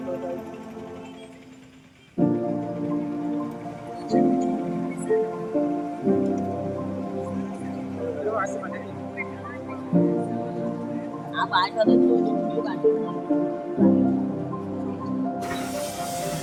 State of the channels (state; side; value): identical; both; correlation 1.00